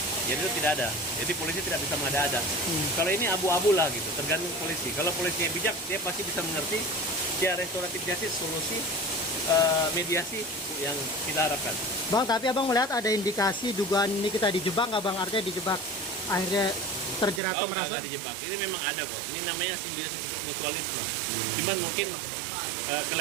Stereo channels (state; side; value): drops out; left; at 17.4 s